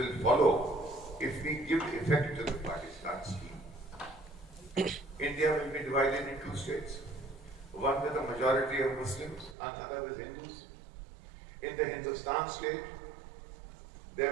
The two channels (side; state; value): left; drops out; at 9.6 s